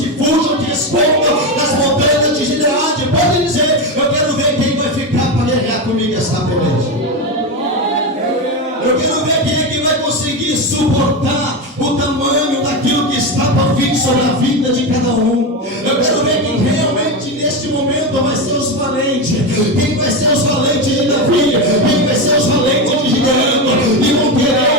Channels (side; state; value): both; normal; correlation 0.15